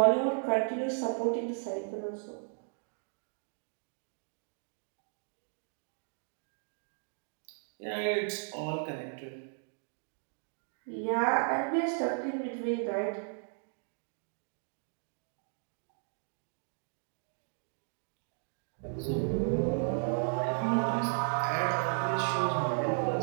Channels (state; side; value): silent; left; 54 dB below the other